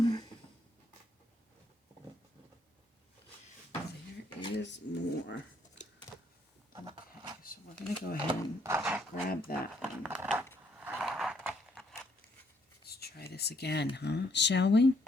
There is more. Okay, so we're going to go ahead and grab that one. Let's try this again, huh? Shall we?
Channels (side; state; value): both; normal; correlation 0.69